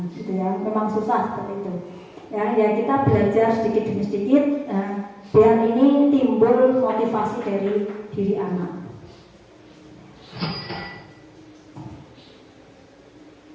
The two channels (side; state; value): both; identical; correlation 1.00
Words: gitu ya, memang susah seperti itu. Ya kita belajar sedikit demi sedikit biar ini timbul motivasi dari diri anak.